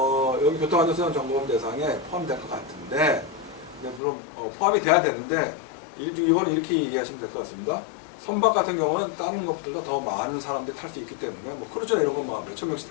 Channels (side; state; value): right; drops out; at 4.0 s